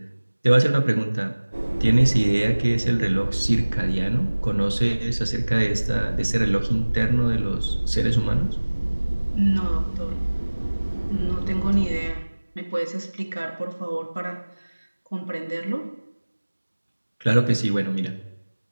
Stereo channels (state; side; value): inverted; both; correlation -1.00